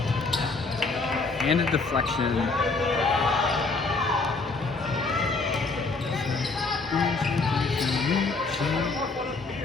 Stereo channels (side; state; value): right; quieter; 3.8 dB